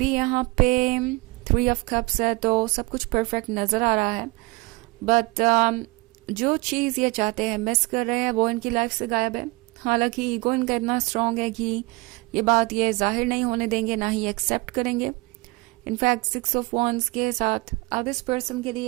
यहाँ पे 3 ऑफ कप्स है तो सब कुछ परफेक्ट नज़र आ रहा है, बट जो चीज़ ये चाहते हैं, मिस कर रहे हैं, वो इनकी लाइफ से गायब है। हालांकि ईगो इनका इतना स्ट्रांग है कि ये बात ये जाहिर नहीं होने देंगे, ना ही एक्सेप्ट करेंगे। इनफैक्ट 6 ऑफ वॉन्ड्स के साथ अब इस पर्सन के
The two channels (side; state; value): left; quieter; 24.8 dB